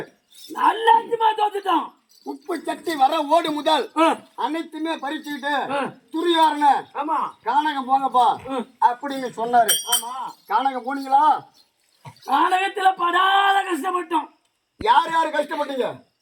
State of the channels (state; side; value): identical; both; correlation 1.00